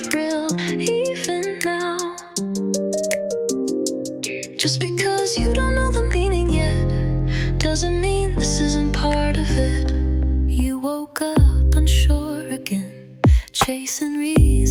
real, even now. Just because you don't know the meaning yet, doesn't mean this isn't part of it. You woke up unsure again, chasing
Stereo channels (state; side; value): identical; both; correlation 1.00